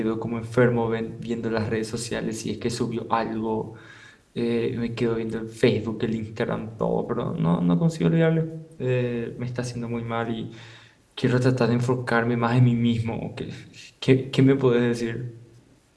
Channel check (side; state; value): both; identical; correlation 1.00